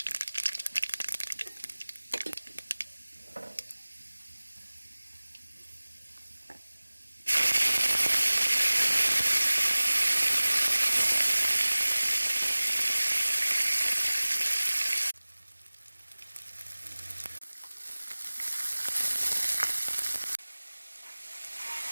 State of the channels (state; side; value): inverted; both; correlation -1.00